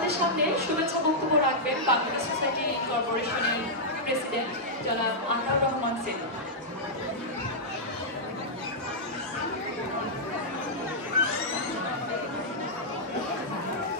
সামনে শুভেচ্ছা বক্তব্য রাখবেন বাংলাদেশ সোসাইটি কর্পোরেশনের প্রেসিডেন্ট জনাব আনোয়ার রহমান সেন।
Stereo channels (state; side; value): normal; both; correlation -0.08